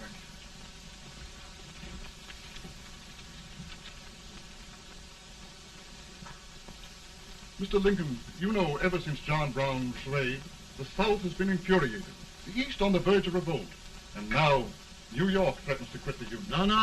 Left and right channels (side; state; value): both; identical; correlation 1.00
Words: Mr. Lincoln, you know ever since John Brown slaved, the South has been infuriated, the East on the verge of revolt, and now New York threatens to quit the Union.